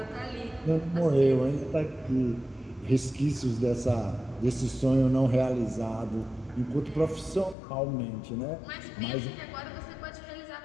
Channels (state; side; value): drops out; right; at 7.6 s